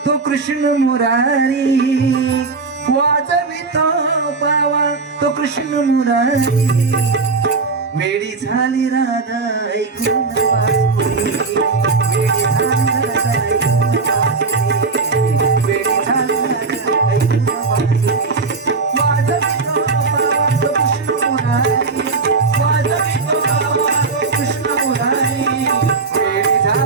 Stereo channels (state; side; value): quieter; left; 4.3 dB